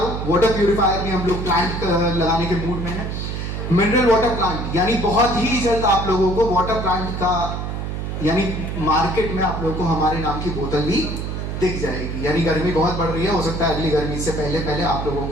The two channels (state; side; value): noise; right; hum, 4 dB below the sound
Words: वाटर प्यूरिफायर में हम लोग प्लांट लगाने के मूड में है। मिनरल वाटर प्लांट, यानी बहुत ही जल्द आप लोगों को वाटर प्लांट का, यानी मार्केट में आप लोगों को हमारे नाम की बोतल भी दिख जाएगी। यानी गर्मी बहुत बढ़ रही है, हो सकता है अगली गर्मी से पहले आप लोगों